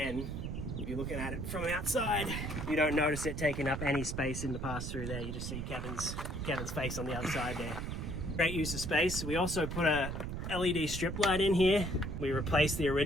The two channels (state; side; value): noise; right; rumble, 4 dB below the sound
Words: if you're looking at it from outside, you don't notice it taking up any space in the pass-through there. You just see Kevin's face on the other side there. Great use of space. We also put a LED strip light in here. We replaced the